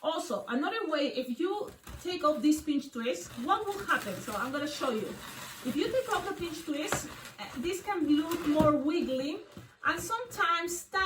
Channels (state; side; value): identical; both; correlation 1.00